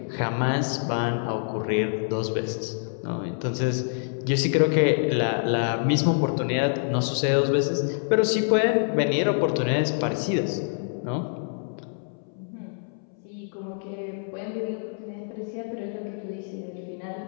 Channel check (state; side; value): silent; right; 61 dB below the other